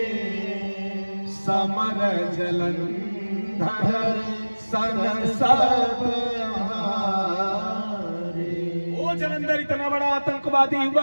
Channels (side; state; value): both; inverted; correlation -1.00